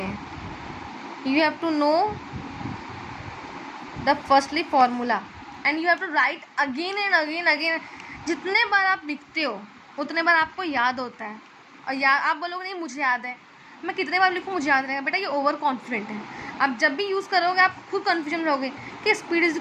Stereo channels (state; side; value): identical; both; correlation 1.00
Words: हैं. You have to know the firstly formula and you have to write again and again. जितने बार आप लिखते हो उतने बार आपको याद होता है. और आप बोलोगे नहीं मुझे याद है, मैं कितने बार लिखूँ मुझे याद रहेगा. बेटा ये ओवर कॉन्फिडेंट है. आप जब भी यूज़ करोगे आप खुद कन्फ्यूजन में रहोगे कि speed is